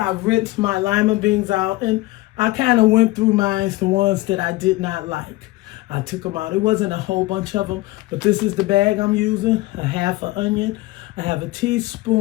rinsed my lima beans out and I kind of went through mine, the ones that I did not like. I took them out. It wasn't a whole bunch of them, but this is the bag I'm using. A half an onion. I have a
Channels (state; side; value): quieter; right; 19.4 dB